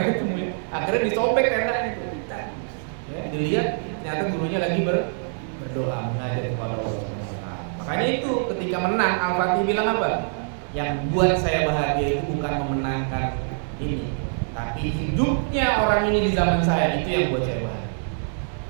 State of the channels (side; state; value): left; silent; digital silence